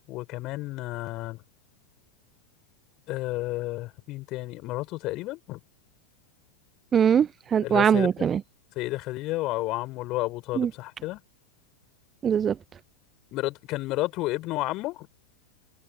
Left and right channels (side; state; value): both; normal; correlation 0.55